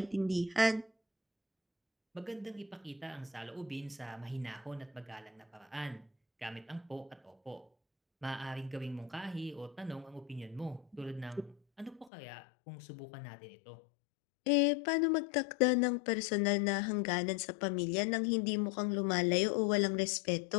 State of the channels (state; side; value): drops out; right; at 12.1 s